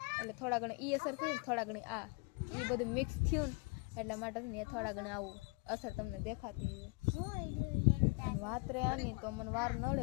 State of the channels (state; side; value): quieter; right; 29.3 dB